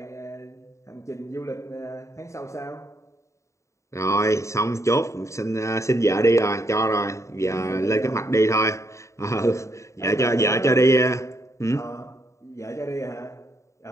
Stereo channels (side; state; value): right; late; 0.14 ms